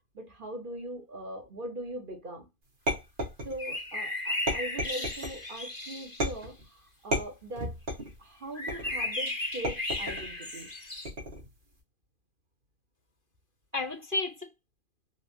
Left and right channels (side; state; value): left; late; 2.4 ms